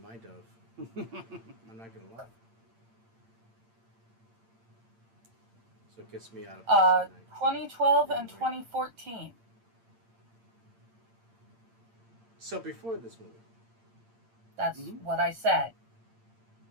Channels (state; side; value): late; left; 8.8 ms